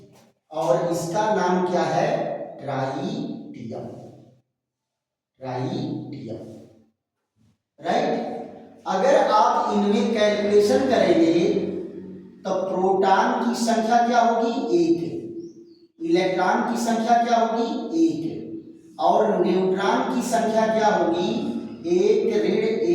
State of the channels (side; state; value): both; identical; correlation 1.00